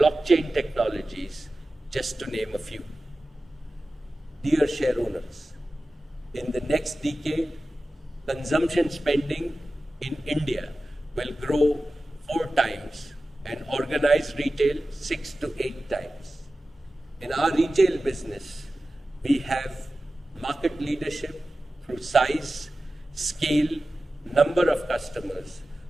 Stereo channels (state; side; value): normal; both; correlation 0.95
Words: technologies, just to name a few. Dear share owners, in the next decade, consumption spending in India will grow 4 times and organized retail 6 to 8 times. In our retail business, we have market leadership through size, scale, number of customers,